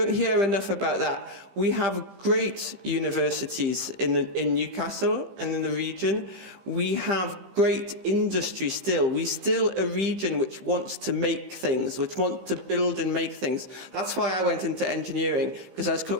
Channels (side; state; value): left; late; 15 ms